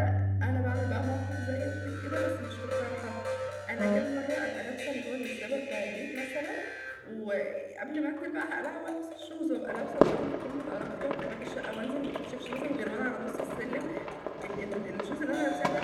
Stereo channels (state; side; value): identical; both; correlation 1.00